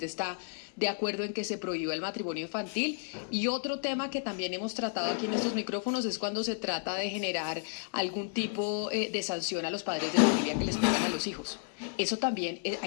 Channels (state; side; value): silent; right; 56 dB below the other